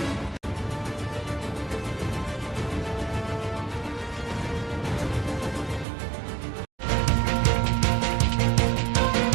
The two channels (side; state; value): left; drops out; at 5.9 s